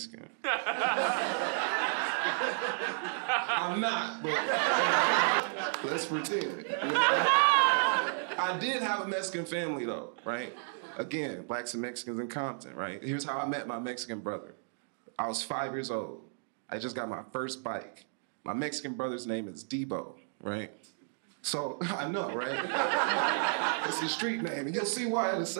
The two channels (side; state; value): left; silent; digital silence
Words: I'm not, but let's pretend. You know? I did have a Mexican family, though, right? Again, blacks and Mexicans in Compton, right? Here's how I met my Mexican brother. I was 5 years old. I just got my first bike. My Mexican brother's name is Debo, right? So, I know, right? It's his street name, and you'll see why in a